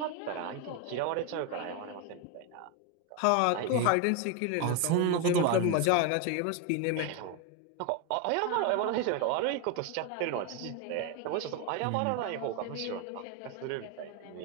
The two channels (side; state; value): both; different; correlation 0.02